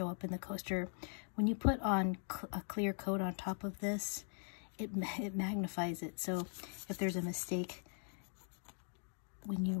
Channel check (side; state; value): right; silent; 51 dB below the other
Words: up in the coaster. When you put on a clear coat on top of this, it magnifies it. So if there's a mistake when you